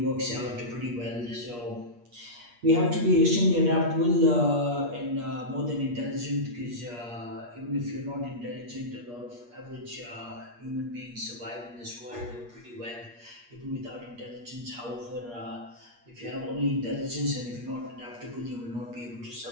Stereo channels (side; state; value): left; late; 8.4 ms